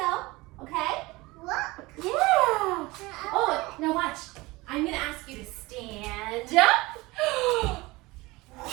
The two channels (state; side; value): quieter; left; 21.9 dB